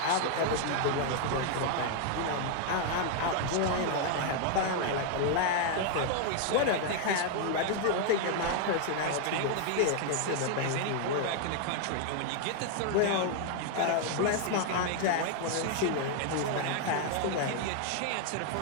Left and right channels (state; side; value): different; both; correlation 0.00